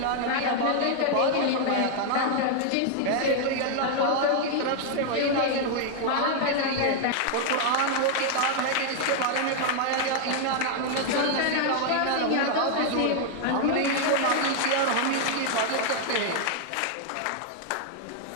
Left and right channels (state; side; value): different; both; correlation 0.00